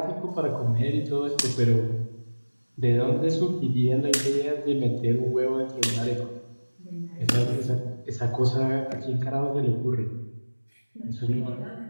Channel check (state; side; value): inverted; both; correlation -1.00